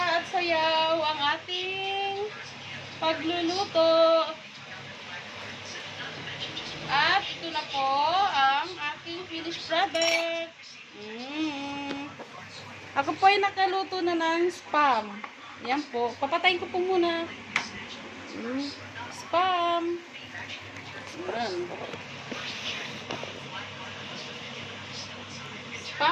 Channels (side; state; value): both; identical; correlation 1.00